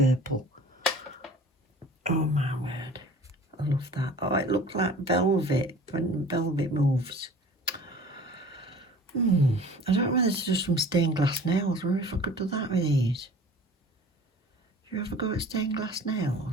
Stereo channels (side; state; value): both; normal; correlation 0.44